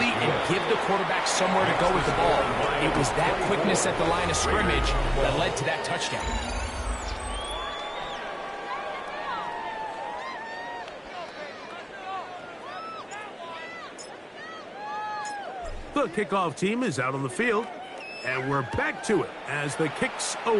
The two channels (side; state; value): both; identical; correlation 1.00